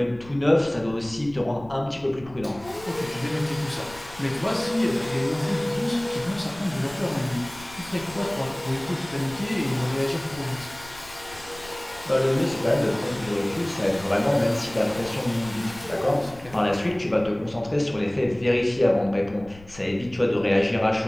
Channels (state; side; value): noise; left; rumble, 20 dB below the sound